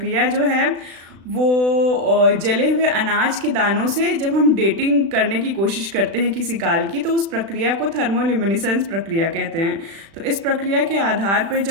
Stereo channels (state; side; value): late; left; 36 ms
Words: जो है वो जले हुए अनाज के दानों से जब हम डेटिंग करने की कोशिश करते हैं किसी काल की तो उस प्रक्रिया को थर्मोल्यूमिनेसेंस प्रक्रिया कहते हैं। तो इस प्रक्रिया के आधार पर